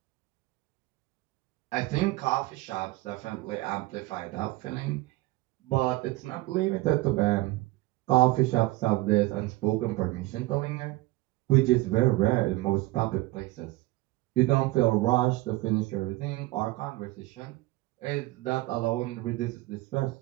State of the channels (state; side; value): quieter; left; 19.6 dB